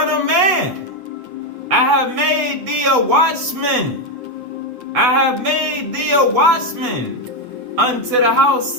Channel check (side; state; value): left; late; 8.1 ms